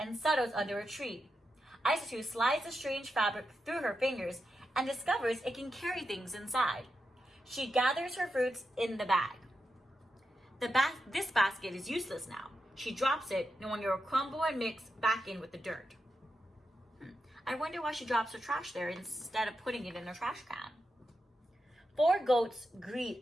settles under a tree. Isatou slides the strange fabric through her fingers and discovers it can carry things inside. She gathers her fruits in the bag. This basket is useless now. She drops it, knowing it will crumble and mix back in with the dirt. I wonder why she drops her trash there instead of putting it in her trash can. 4 goats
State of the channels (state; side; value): normal; both; correlation 0.88